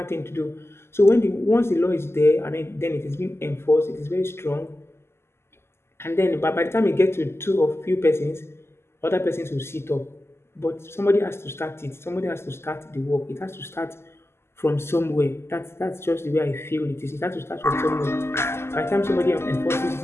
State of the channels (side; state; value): right; late; 0.12 ms